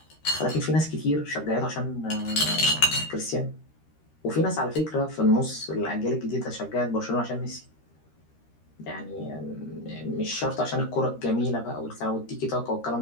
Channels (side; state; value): right; late; 13 ms